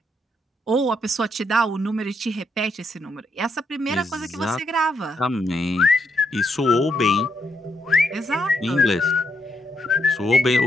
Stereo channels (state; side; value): normal; both; correlation 0.78